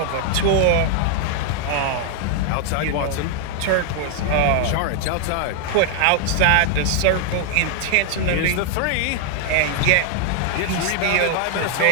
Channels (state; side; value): different; both; correlation 0.00